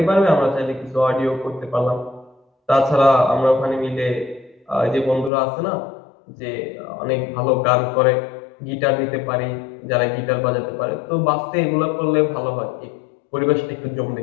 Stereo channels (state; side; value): drops out; right; at 5.3 s